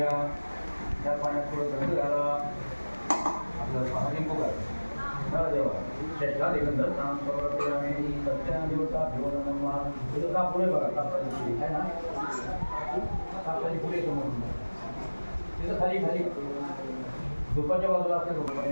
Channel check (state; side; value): inverted; both; correlation -1.00